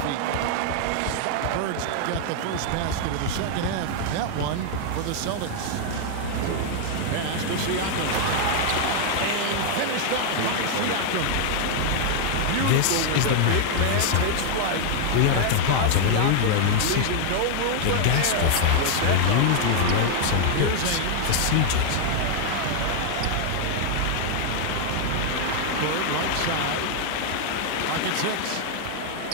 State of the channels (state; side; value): different; both; correlation 0.00